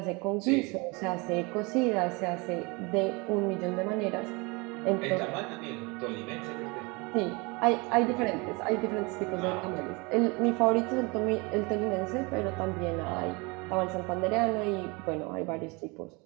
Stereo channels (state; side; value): quieter; left; 27.7 dB